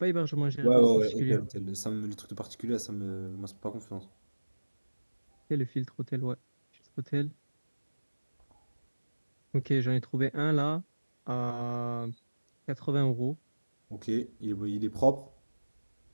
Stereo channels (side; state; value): both; inverted; correlation -1.00